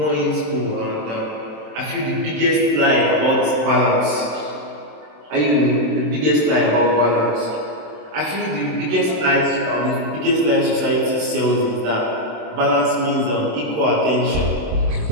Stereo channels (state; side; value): late; left; 27 ms